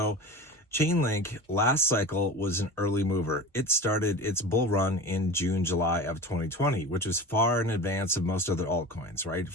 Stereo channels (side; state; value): both; normal; correlation 0.33